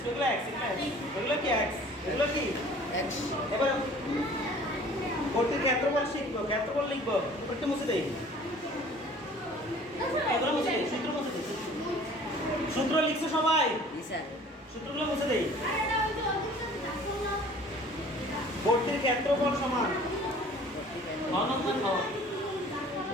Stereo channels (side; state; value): both; normal; correlation 0.49